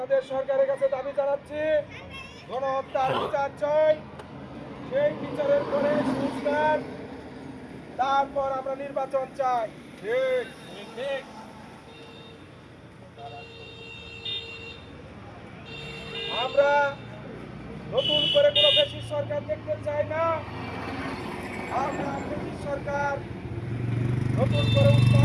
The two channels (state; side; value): identical; both; correlation 1.00